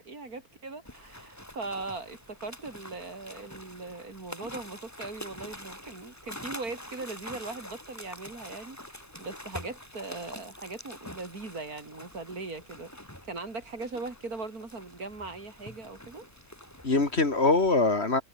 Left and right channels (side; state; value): both; normal; correlation -0.04